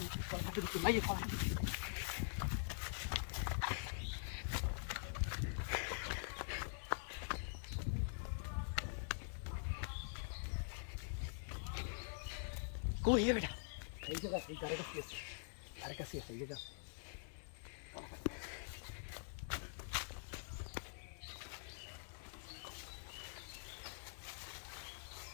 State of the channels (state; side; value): silent; right; digital silence